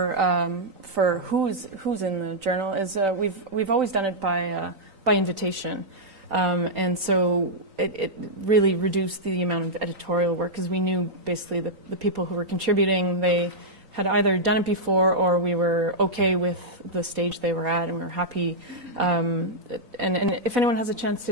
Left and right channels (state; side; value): late; left; 3.9 ms